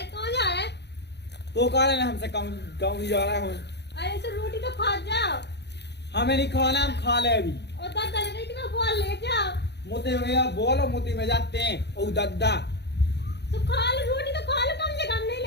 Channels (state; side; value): late; right; 0.49 ms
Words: जा रहे? तो कह रहे हमसे गाँव जा रहा हूँ। अरे तो रोटी तो खा जाओ। हमें नहीं खाना, हम खा ले अभी। और दादा ने कहा बोल ले जाओ। मोती में बोलो मोती में जाते हैं ओ दादा। तो खा लो रोटी तो खा लो, कम से कम नहीं